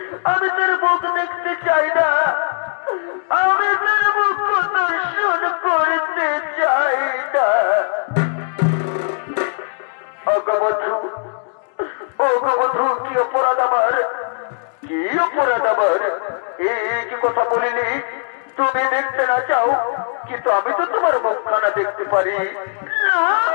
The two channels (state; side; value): silent; right; digital silence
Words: আমি তার মুখ দেখতে চাই না, আমি তার মুখ দর্শন করতে চাই না। অগবধূ, কি অপরাধ আমার, কি অপরাধ আমার? এই কি কথা বলিনি? তুমি দেখতে না চাও, কিন্তু আমি তো তোমার মুখখানা দেখতে পারি না।